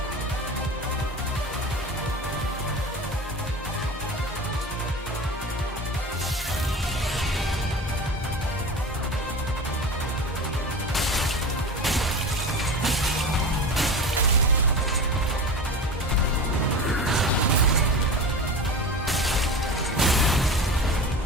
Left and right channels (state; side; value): normal; both; correlation 0.30